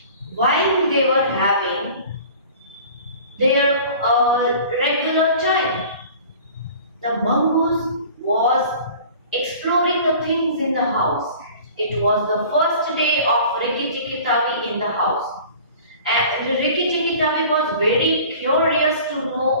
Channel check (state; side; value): inverted; both; correlation -0.44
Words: while they were having their regular child, the mongoose was exploring the things in the house. It was the first day of Rikki Tikki Tavi in the house. And Rikki Tikki Tavi was very curious to